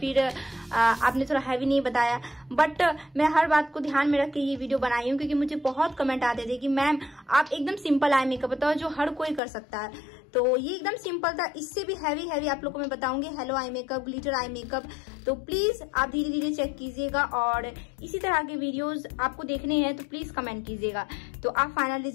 आपने थोड़ा हैवी नहीं बताया। बट मैं हर बात को ध्यान में रख के ये वीडियो बनाई हूँ, क्योंकि मुझे बहुत कमेंट आते थे कि मैम आप एकदम सिंपल आई मेकअप बताओ जो हर कोई कर सकता है। तो ये एकदम सिंपल था। इससे भी हैवी आप लोगों को मैं बताऊंगी, hello eye makeup, glitter eye makeup. तो प्लीज आप धीरे धीरे चेक कीजिएगा, और इसी तरह के वीडियोस आपको देखने हैं तो प्लीज कमेंट कीजिएगा। तो आप फाइनल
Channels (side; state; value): right; drops out; at 9.4 s